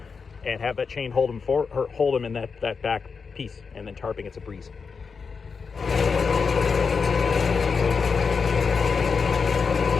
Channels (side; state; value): right; quieter; 5.3 dB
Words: have that chain hold them in that back piece, and then tarping it's a breeze.